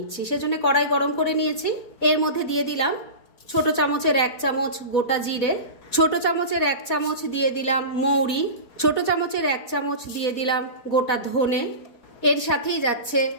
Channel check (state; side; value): late; right; 4.1 ms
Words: সেজন্য কড়াই গরম করে নিয়েছি। এর মধ্যে দিয়ে দিলাম ছোট চামচের 1 চামচ গোটা জিরে, ছোট চামচের 1 চামচ দিয়ে দিলাম মৌরি, ছোট চামচের 1 চামচ দিয়ে দিলাম গোটা ধনে, এর সাথেই যাচ্ছে